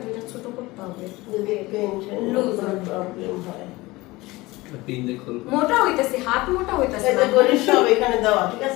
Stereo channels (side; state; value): right; quieter; 20.8 dB